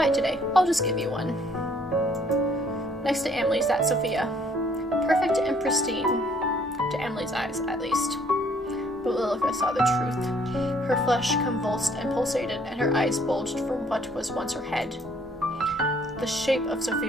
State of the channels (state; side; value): normal; both; correlation 0.63